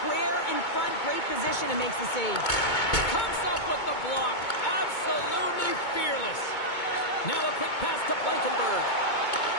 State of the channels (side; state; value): right; late; 2.2 ms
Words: square in front. Great position and makes the save. Comes up with the block. Absolutely fearless. Now a quick pass to Blankenberg.